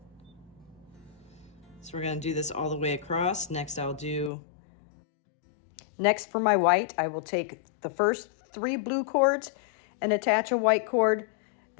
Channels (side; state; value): right; drops out; at 4.3 s